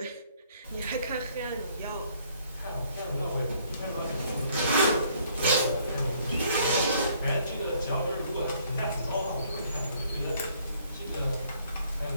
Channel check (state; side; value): inverted; both; correlation -0.63